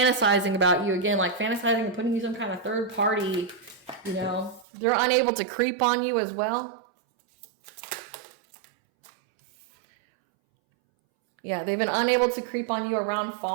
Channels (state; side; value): drops out; left; at 4.7 s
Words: about you. Again, like fantasizing and putting you some kind of third party, you know. They're unable to creep on you as well. Yeah, they've been unable to creep on you around